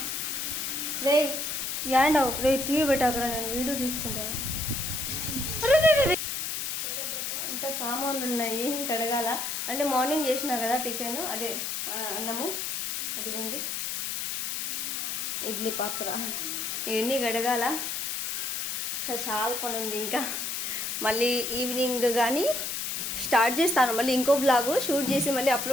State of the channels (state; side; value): noise; left; hiss, 2 dB below the sound